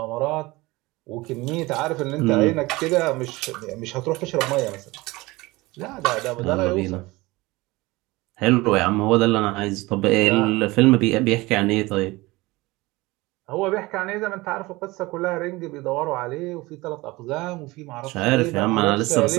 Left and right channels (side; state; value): left; quieter; 21.3 dB